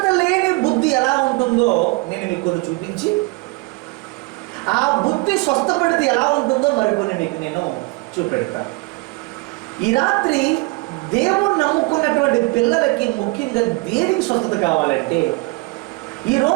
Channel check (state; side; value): quieter; left; 26.1 dB